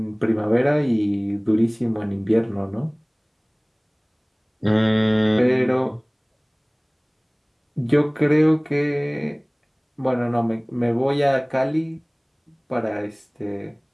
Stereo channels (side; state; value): both; identical; correlation 1.00